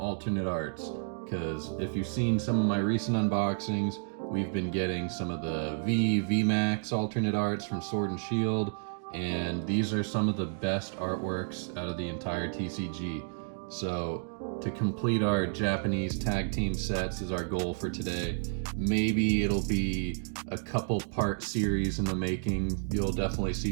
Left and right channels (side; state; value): left; silent; digital silence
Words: arts, because if you've seen some of my recent unboxings, we've been getting some of the VMAX alternate arts from Sword and Shield, and these are some of the best artworks out of the entire TCG. So to complete our Japanese tag team sets is our goal for today. Maybe it'll be a couple part series in the making. You'll definitely